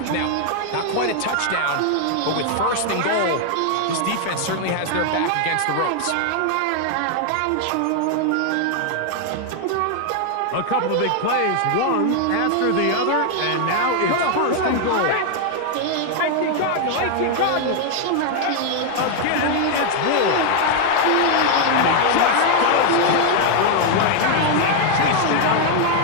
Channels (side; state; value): both; different; correlation 0.00